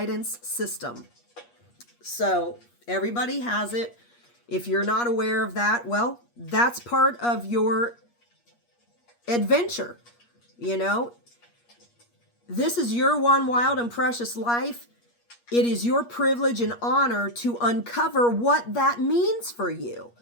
system. So everybody has it. If you're not aware of that, well, that's part of your adventure. This is your one wild and precious life. It is your privilege and honor to uncover what that means for you.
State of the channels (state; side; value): late; right; 8.4 ms